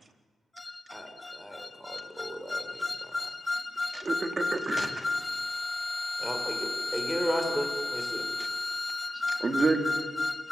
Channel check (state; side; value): normal; both; correlation 0.93